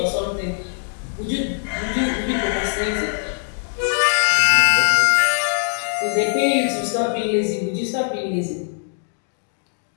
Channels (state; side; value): silent; right; digital silence